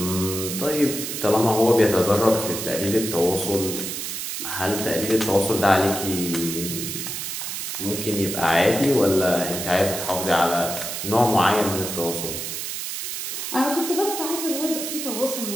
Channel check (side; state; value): right; noise; hiss, 5 dB below the sound